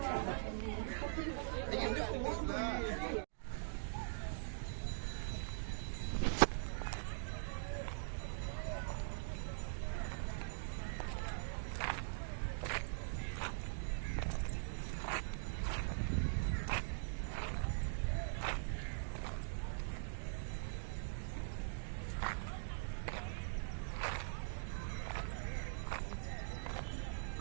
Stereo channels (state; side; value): silent; left; digital silence